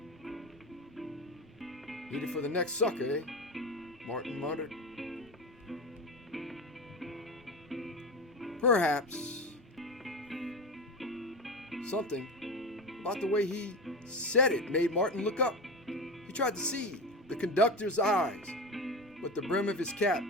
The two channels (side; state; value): both; normal; correlation 0.24